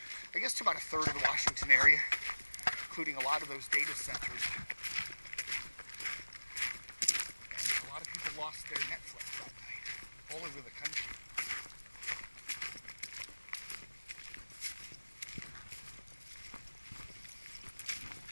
I guess, to about a third of the Washington area, including a lot of those data centers. And a lot of people lost their Netflix that night, all over the country.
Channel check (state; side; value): inverted; both; correlation -1.00